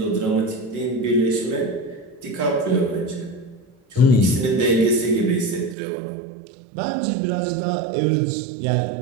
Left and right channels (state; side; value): drops out; left; at 5.8 s